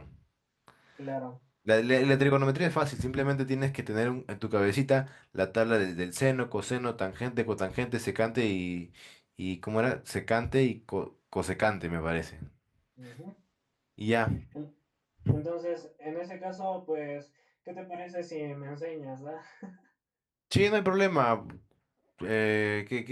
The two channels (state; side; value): identical; both; correlation 1.00